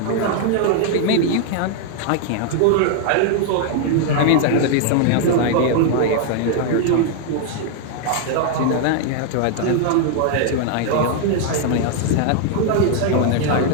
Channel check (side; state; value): both; different; correlation 0.00